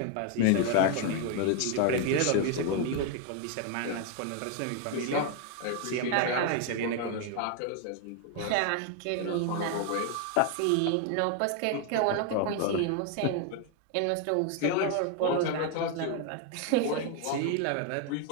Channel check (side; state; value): both; different; correlation 0.01